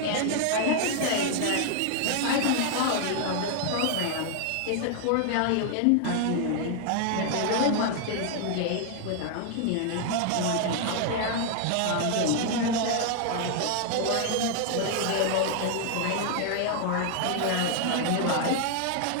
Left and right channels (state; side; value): different; both; correlation 0.00